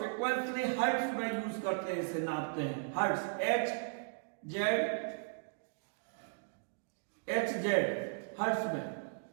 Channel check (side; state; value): left; silent; digital silence